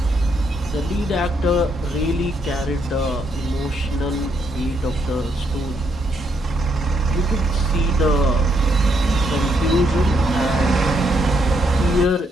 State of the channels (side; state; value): both; normal; correlation 0.75